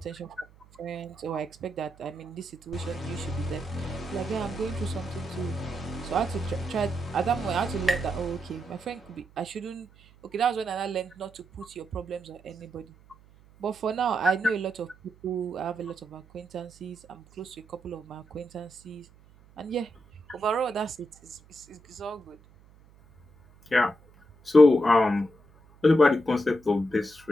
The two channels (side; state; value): right; noise; hum, 26 dB below the sound